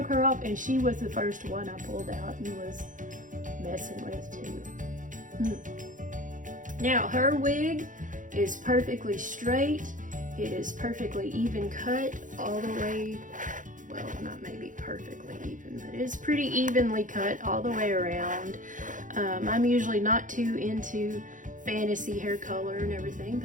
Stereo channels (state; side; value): late; left; 0.38 ms